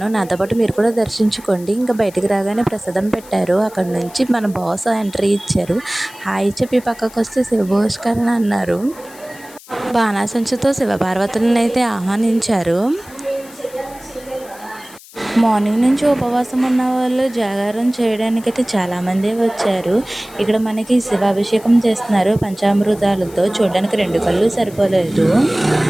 నాతో పాటు మీరు కూడా దర్శించుకోండి. ఇంకా బయటికి రాగానే ప్రసాదం పెట్టారు. అక్కడ నుంచి మన బాస్ ఎంట్రీ ఇచ్చారు. హాయ్ చెప్పి పక్కకు వస్తే శివభోష్కరణ అన్నారు. బాణాసంచుతో శివపార్వతులను అయితే ఆహ్వానించారు. మార్నింగ్ నుంచి ఉపవాసం ఉన్న వాళ్ళు జాగారం చేయడానికైతే చాలామంది వచ్చారు. ఇక్కడ మనకి శివాభిషేకం చేస్తున్నారు పంచామృతాలతో. చూడడానికి 2 కళ్ళు సరిపోలేదు.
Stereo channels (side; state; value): left; noise; hiss, 21 dB below the sound